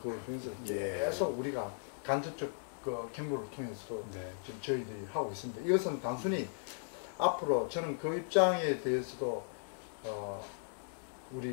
중에서 계속 우리가 간접적 그 경로를 통해서도 지금 저희들이 하고 있습니다. 이것은 단순히 앞으로 저는 그 입장에 대해서도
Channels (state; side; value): silent; right; digital silence